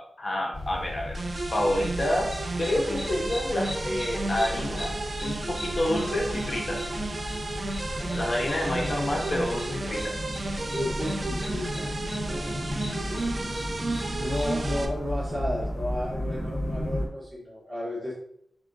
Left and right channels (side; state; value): both; normal; correlation 0.94